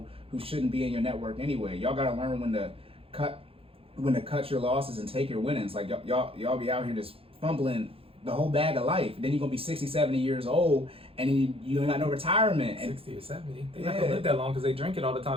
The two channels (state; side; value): late; left; 0.27 ms